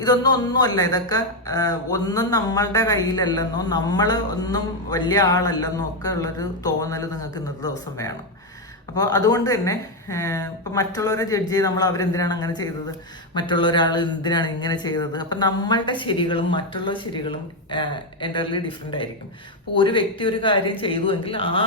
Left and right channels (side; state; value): both; normal; correlation 0.05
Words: ഒന്നുമല്ല, ഇതൊക്കെ ഒന്നും നമ്മളുടെ കയ്യിലല്ലെന്നോ നമ്മൾ ഒന്നും വലിയ ആളല്ലെന്നോ ഒക്കെ ഉള്ളൊരു തോന്നൽ നിങ്ങൾക്ക് ഇന്നത്തെ ദിവസം വേണം. അപ്പോൾ അതുകൊണ്ട് തന്നെ ഇപ്പം മറ്റുള്ളവരെ ജഡ്ജ് ചെയ്ത് നമ്മൾ അവരെന്തിനാണ് അങ്ങനെ ചെയ്തത്, മറ്റുള്ള ഒരാൾ എന്തിനാണ് ഇങ്ങനെ ചെയ്തത്, അപ്പം നമ്മളുടെ ശരികളും മറ്റുള്ള ശരികളും എൻ്റർലി ഡിഫറെൻ്റ് ആയിരിക്കും. അപ്പോൾ ഒരു വ്യക്തി ഒരു കാര്യം ചെയ്തുവെങ്കിൽ ആ